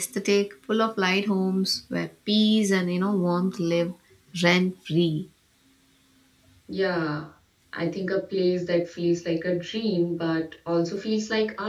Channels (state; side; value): identical; both; correlation 1.00